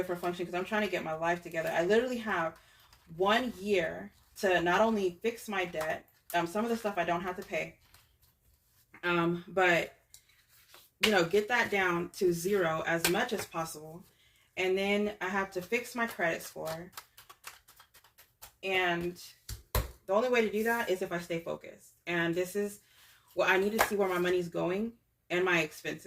for function because I'm trying to get my life together. I literally have 1 year to not only fix my debt, some of the stuff I don't have to pay, but get that down to 0 as much as possible. And then I have to fix my credit score. And the only way to do that is if I stay focused. And this is what I need to see, where my money's going and my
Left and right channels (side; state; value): both; identical; correlation 1.00